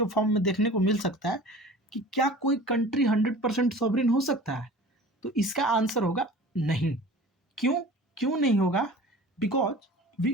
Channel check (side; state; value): both; normal; correlation 0.41